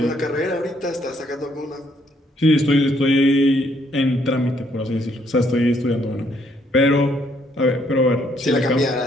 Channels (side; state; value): both; normal; correlation 0.69